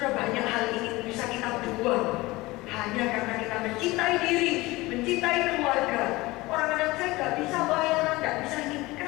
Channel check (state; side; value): quieter; right; 20.8 dB